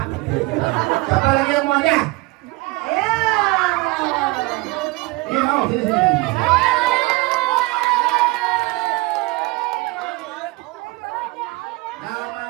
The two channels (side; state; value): left; quieter; 22.8 dB